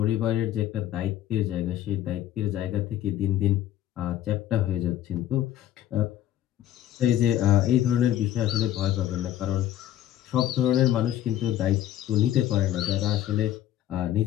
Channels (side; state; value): right; quieter; 12.3 dB